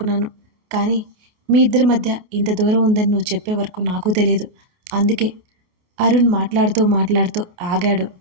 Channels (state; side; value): late; left; 28 ms